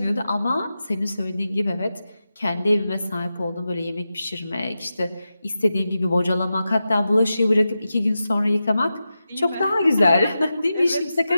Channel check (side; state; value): both; inverted; correlation -0.91